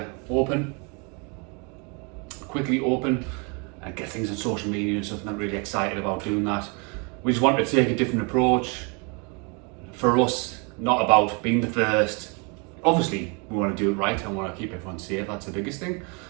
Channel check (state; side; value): quieter; left; 33.1 dB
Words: quickly open and get things on social media and stuff, and I'm really excited about doing that. We just wanted to take a different approach. For us, not about being the first. Obviously, we want to do it right and want to keep everyone safe, that's the biggest thing,